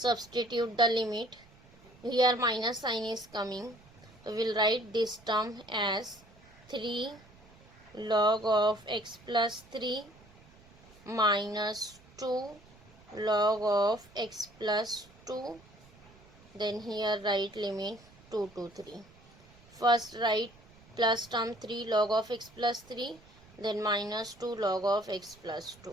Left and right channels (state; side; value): noise; right; rumble, 25 dB below the sound